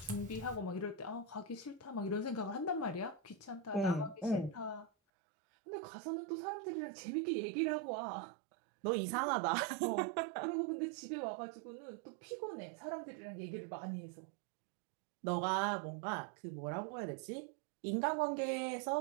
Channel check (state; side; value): drops out; left; at 4.9 s